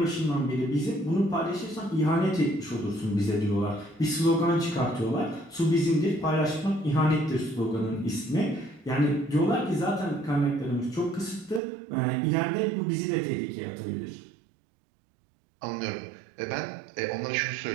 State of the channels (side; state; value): left; drops out; at 11.6 s